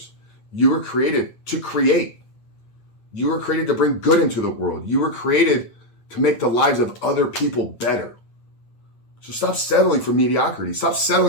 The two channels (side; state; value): right; late; 8.9 ms